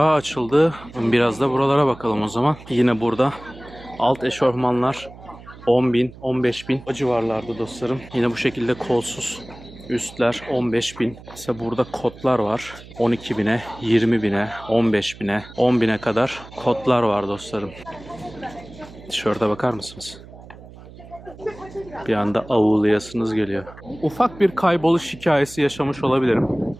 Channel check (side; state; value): right; noise; hum, 19 dB below the sound